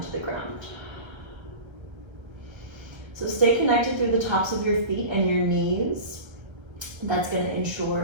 to the ground. So stay connected through the tops of your feet and your knees. That's gonna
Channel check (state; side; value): late; left; 1.3 ms